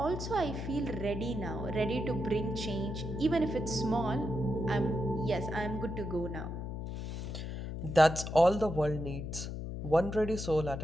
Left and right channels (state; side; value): noise; left; hum, 6 dB below the sound